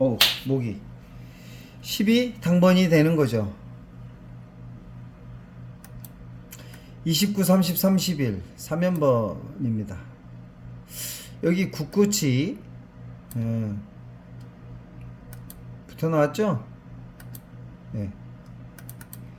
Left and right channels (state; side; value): identical; both; correlation 1.00